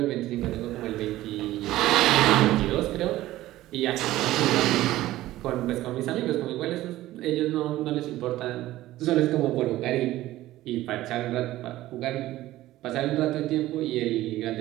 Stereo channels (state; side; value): quieter; left; 15.7 dB